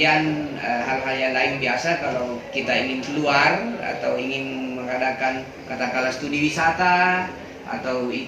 hal-hal yang lain biasa kalau kita ingin keluar atau ingin mengadakan katakanlah studi wisata atau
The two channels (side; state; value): both; identical; correlation 1.00